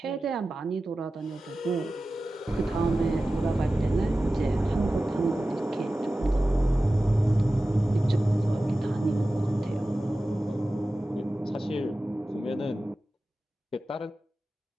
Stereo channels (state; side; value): normal; both; correlation 0.95